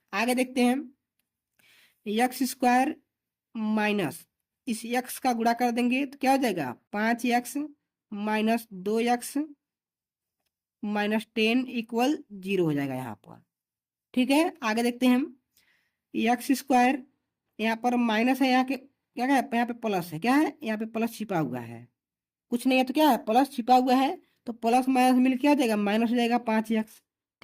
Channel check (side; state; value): both; identical; correlation 1.00